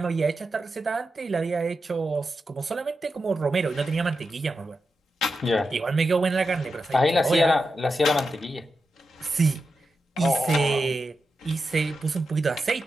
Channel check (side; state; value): both; normal; correlation 0.89